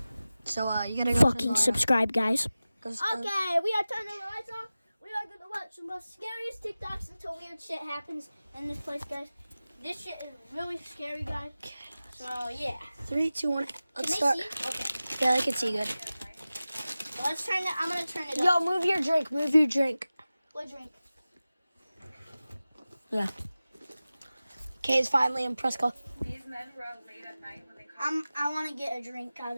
So, you gotta go Fucking subscribe, guys. Okay, We are turning the lights off. We are going to watch some of the scariest TikToks until weird shit happens in this place, guys. This shit is really scary, guys. So, yeah. 3, 2, 1. Let's Can start. they see? Okay. Yeah, they can see good. So let's turn it. I'm going to turn it up. Yo, move your drink. Move your drink. What drink? Yeah. Kay's finally in Prescott. These men were out late at night when they called. I want to get a drink out of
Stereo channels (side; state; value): both; inverted; correlation -0.96